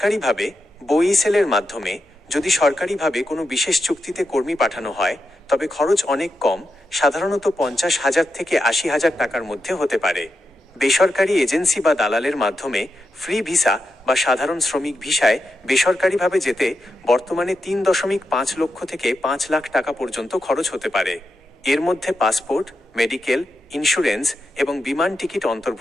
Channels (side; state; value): both; normal; correlation 0.87